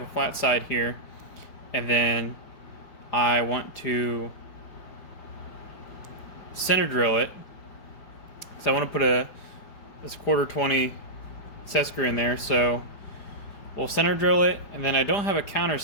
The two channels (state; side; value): late; right; 4.9 ms